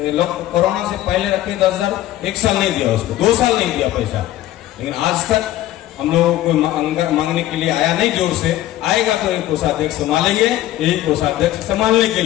कोरोना से पहले रखे 10,000, 1 साल नहीं दिया उसको, 2 साल नहीं दिया पैसा। लेकिन आज तक हम लोगों को मांगने के लिए आया नहीं, जोर से आएगा तो एक कोषाध्यक्ष संभालेंगे, यही कोषाध्यक्ष संभालने के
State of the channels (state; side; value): quieter; right; 14.2 dB